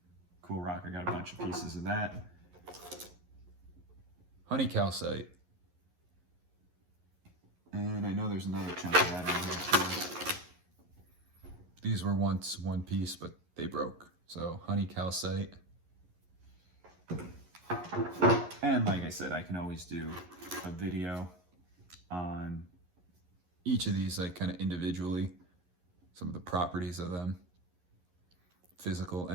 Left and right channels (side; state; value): left; late; 11 ms